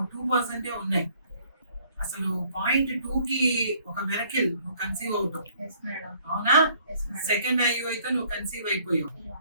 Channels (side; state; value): both; inverted; correlation -0.61